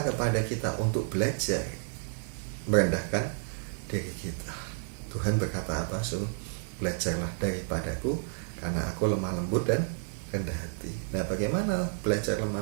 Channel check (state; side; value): silent; left; digital silence